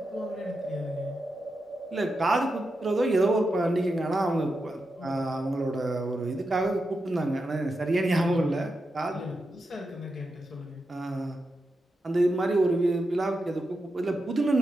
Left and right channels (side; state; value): both; normal; correlation 0.88